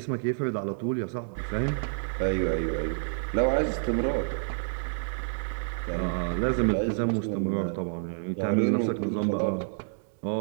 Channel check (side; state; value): left; silent; digital silence